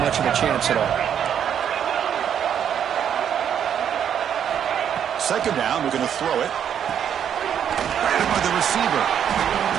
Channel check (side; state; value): left; quieter; 8.9 dB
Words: much of a chance at all. Second down, we're going to throw it. Grabbed by the receiver.